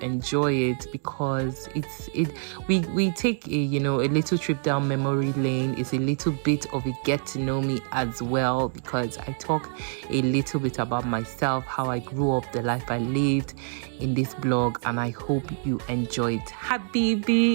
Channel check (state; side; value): silent; left; 61 dB below the other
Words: enjoy it, because we take a little trip down memory lane. It's a little bit of a get to know me as well, because I talk a little bit about myself, how I grew up, the life I lived in this blog, and I hope you enjoy it.